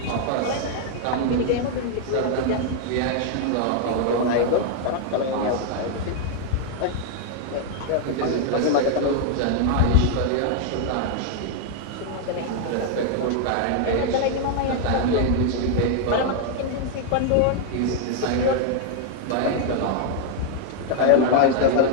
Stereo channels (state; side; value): different; both; correlation 0.00